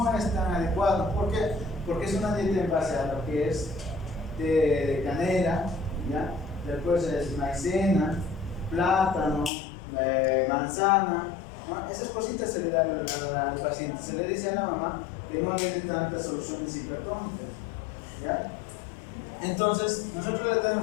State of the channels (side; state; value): right; drops out; at 9.5 s